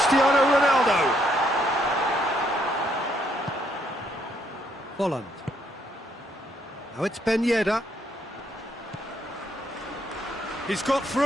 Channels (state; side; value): normal; both; correlation 0.72